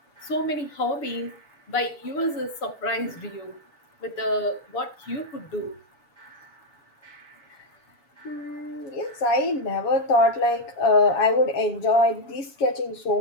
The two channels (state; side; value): late; right; 7.0 ms